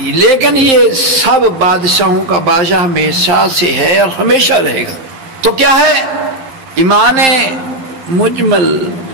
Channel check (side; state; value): left; late; 11 ms